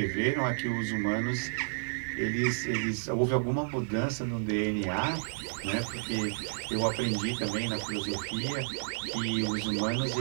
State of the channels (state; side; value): silent; left; 57 dB below the other